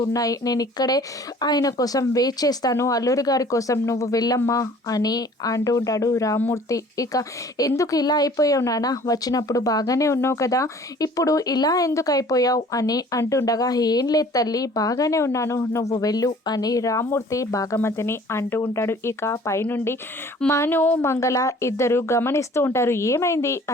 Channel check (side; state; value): both; normal; correlation 0.51